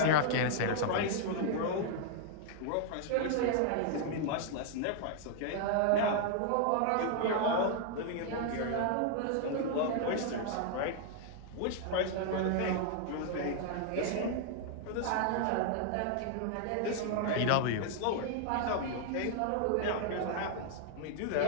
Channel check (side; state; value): both; different; correlation 0.00